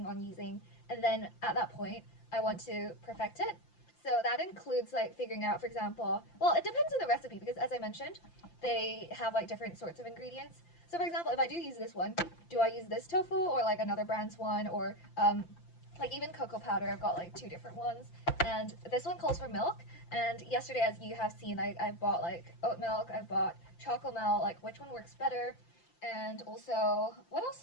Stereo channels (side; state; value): right; late; 5.8 ms